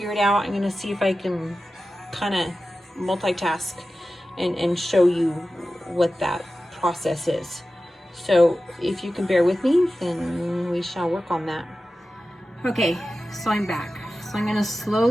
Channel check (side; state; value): both; normal; correlation 0.94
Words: it out, I'm gonna see if I can kind of multitask and show you what that process is. So if you can bear with me, then we shall work on that. Okay, so I'm back. So I'm gonna